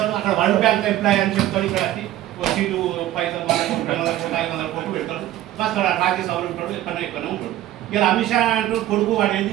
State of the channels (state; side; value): quieter; left; 13.8 dB